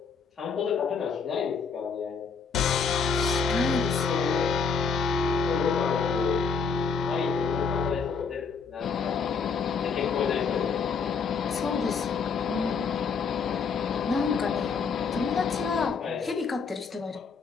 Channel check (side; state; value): right; quieter; 5.5 dB